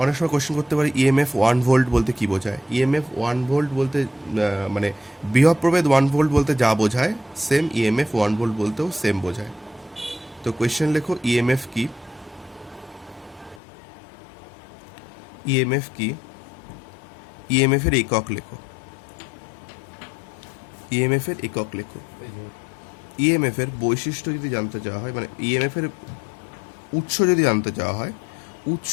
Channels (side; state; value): right; drops out; at 13.6 s